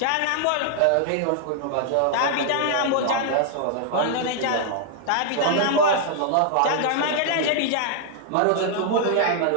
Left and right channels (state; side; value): different; both; correlation -0.01